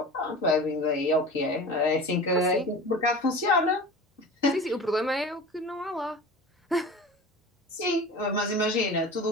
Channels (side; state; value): both; normal; correlation 0.36